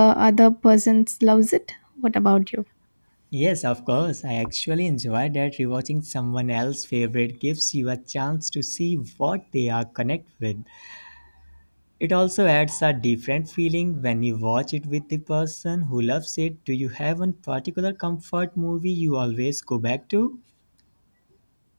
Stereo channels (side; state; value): both; inverted; correlation -1.00